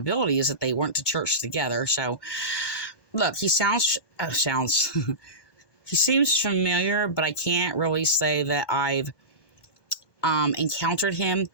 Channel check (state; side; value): late; right; 1.2 ms